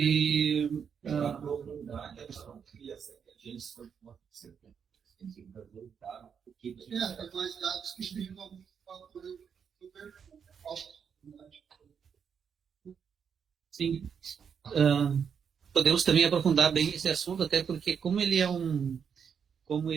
mais dados que explicam alguns fatores super Sim. Podemos também aprofundar bem esse assunto, até porque como ele é um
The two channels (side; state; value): left; quieter; 7.1 dB